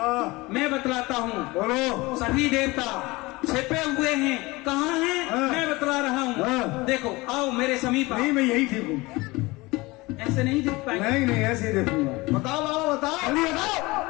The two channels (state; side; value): quieter; right; 22.3 dB